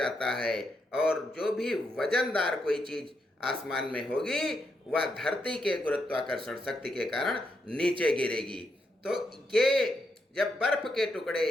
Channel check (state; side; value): normal; both; correlation 0.81